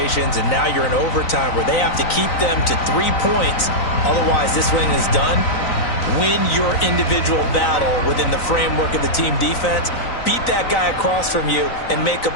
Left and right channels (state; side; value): late; right; 3.9 ms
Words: and now you're in overtime where they have to keep them to 3 points. Otherwise, this win is done. Win your individual battle within the framework of the team defense. Beat that guy across from you and make a